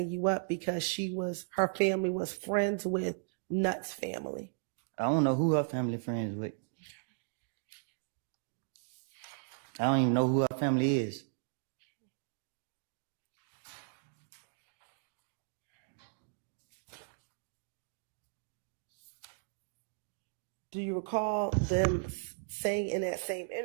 you up because her family was friends with Nutt's family? I don't know who her family friends with. I don't even know who her family is. Do you recall them saying in that same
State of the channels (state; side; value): silent; left; digital silence